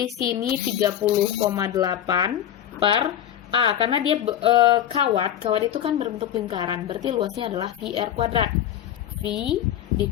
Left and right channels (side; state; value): right; quieter; 10.7 dB